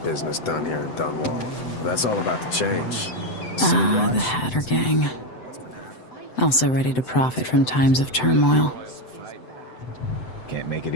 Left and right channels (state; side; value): late; right; 7.9 ms